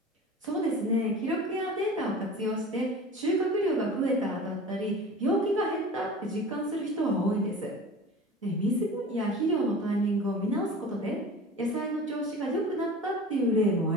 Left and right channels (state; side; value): normal; both; correlation 0.37